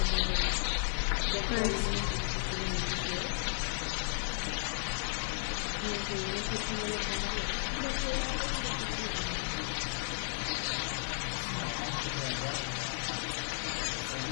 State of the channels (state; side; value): silent; right; digital silence